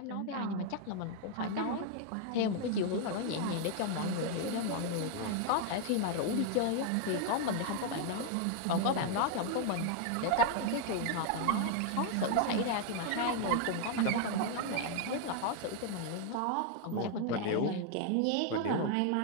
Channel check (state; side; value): different; both; correlation 0.00